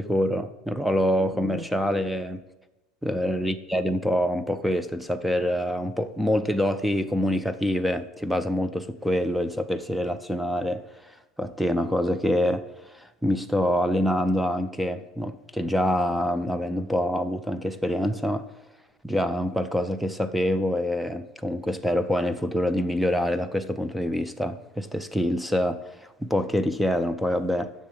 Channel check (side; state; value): both; normal; correlation 0.84